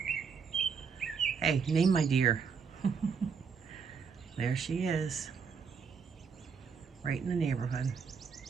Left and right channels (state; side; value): quieter; left; 6.0 dB